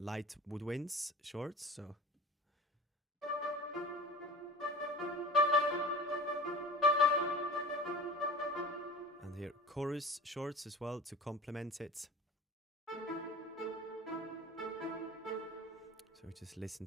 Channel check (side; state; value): both; normal; correlation 0.39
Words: light woodwinds shorts. So. And here chorus shorts as well to complement it. So we just listen